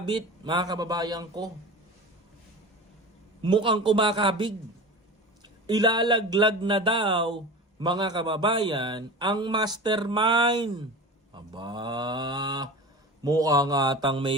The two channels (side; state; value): both; normal; correlation 0.32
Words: mga kababayan ko, mukhang kumakabig. Ilalaglag na daw, mga kababayan, ang mastermind. Aba, mukhang atang